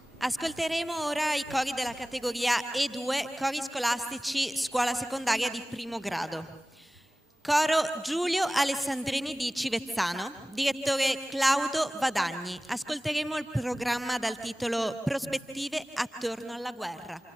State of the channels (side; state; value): both; normal; correlation 0.97